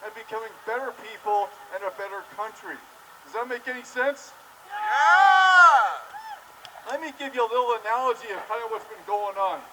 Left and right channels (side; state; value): both; identical; correlation 1.00